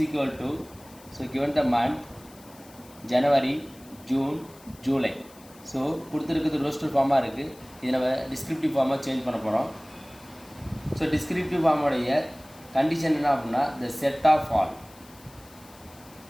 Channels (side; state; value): left; noise; hiss, 24 dB below the sound